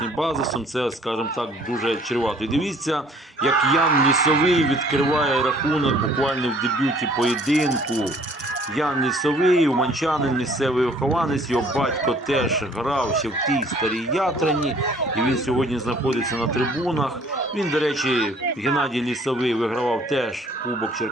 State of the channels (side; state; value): both; normal; correlation 0.57